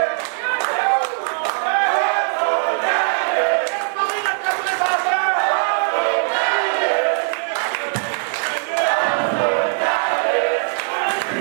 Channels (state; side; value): silent; left; 58 dB below the other